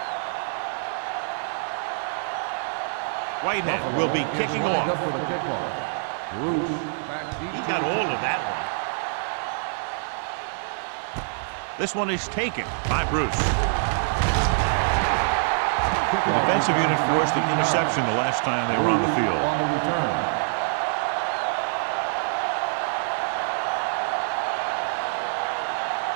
Whitehead will be kicking off. Up for the kickoff. Bruce back deep. He got all of that one. This one is taken by Bruce. The defensive unit forced an interception the last time they were on the field. On the return.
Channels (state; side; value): silent; left; 61 dB below the other